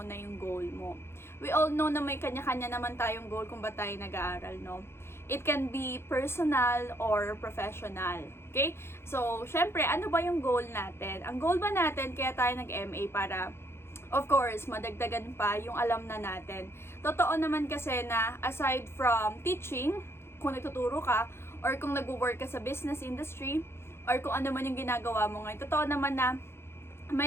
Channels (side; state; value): right; late; 0.12 ms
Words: yung goal mo. We all know na may kanya-kanya naman tayong goal kung ba tayo nag-aaral, no? It can be personal or professional. Okay? So, syempre, ano ba yung goal natin? Ang goal ba natin, kaya tayo nag-MA para, of course, madagdagan pa yung alam na natin. Totoo naman kasi na aside from teaching, kung nagtuturo ka, or kung nag-work ka sa business industry, or kung ano man yung ginagawa mo ngayon, totoo naman na